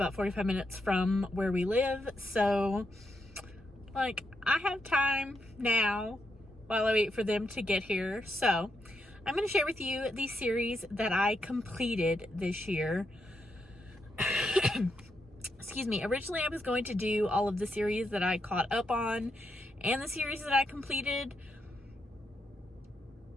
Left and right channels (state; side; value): normal; both; correlation 0.82